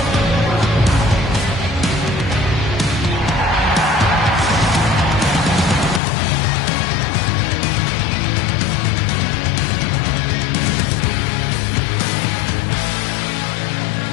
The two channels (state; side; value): drops out; right; at 6.0 s